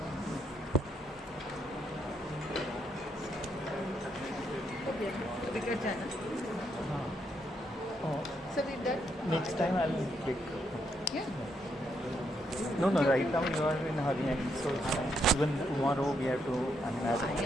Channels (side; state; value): both; normal; correlation 0.77